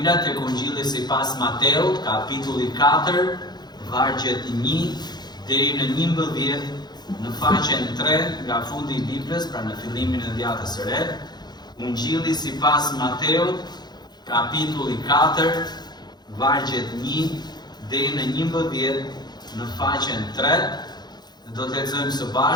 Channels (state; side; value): late; right; 0.20 ms